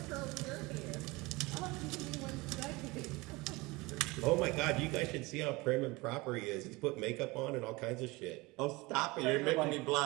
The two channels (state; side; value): quieter; left; 23.2 dB